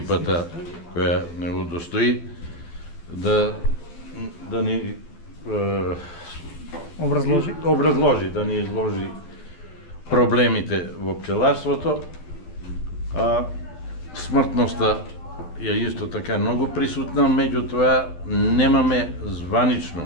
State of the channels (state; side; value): late; right; 12 ms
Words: која не удостои да ни образложи, да ни изложи проблемите во пчеларството. Смртноста е исто така многу присутна, меѓутоа немаме